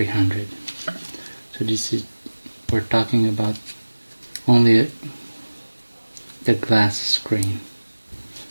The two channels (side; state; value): both; inverted; correlation -1.00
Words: So we're talking about only the glass screen.